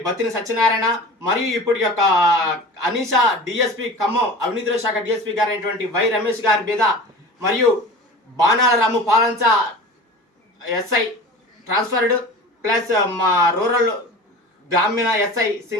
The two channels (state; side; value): normal; both; correlation 0.35